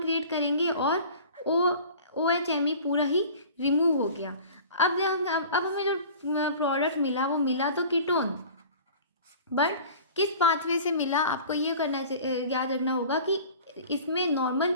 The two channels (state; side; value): inverted; both; correlation -0.42